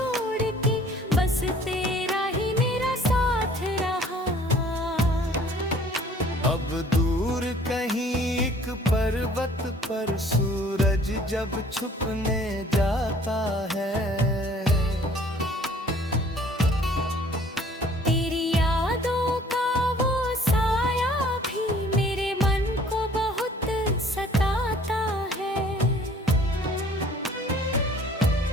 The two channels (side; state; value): both; normal; correlation 0.55